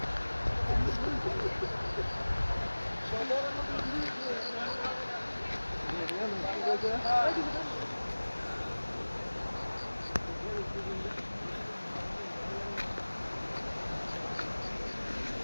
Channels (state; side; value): inverted; both; correlation -1.00